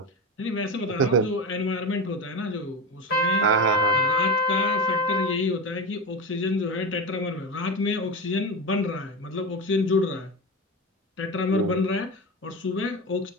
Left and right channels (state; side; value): normal; both; correlation 0.22